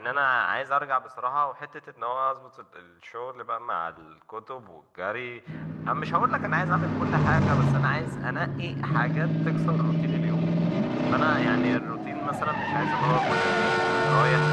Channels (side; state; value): both; identical; correlation 1.00